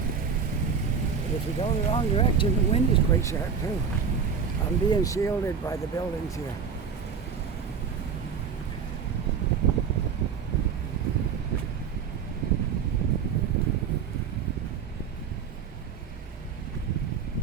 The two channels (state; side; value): quieter; left; 6.6 dB